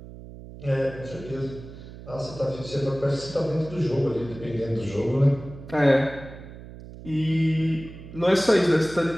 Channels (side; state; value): right; noise; hum, 15 dB below the sound